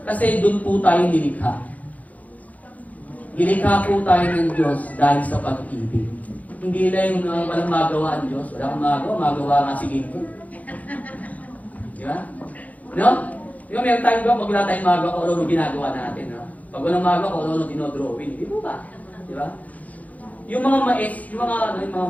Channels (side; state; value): right; late; 0.074 ms